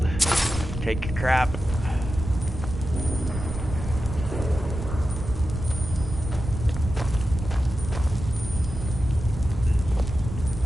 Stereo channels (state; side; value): noise; right; rumble, 7 dB below the sound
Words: Take your crap.